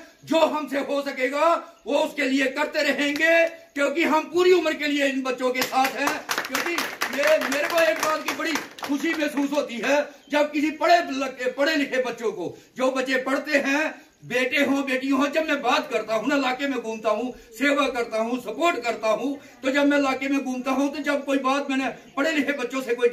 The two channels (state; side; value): identical; both; correlation 1.00